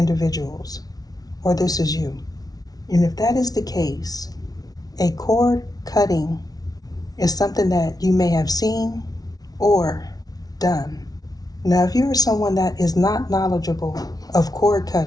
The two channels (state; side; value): late; right; 0.18 ms